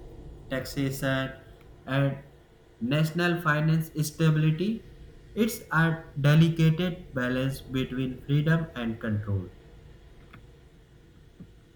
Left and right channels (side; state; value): both; identical; correlation 1.00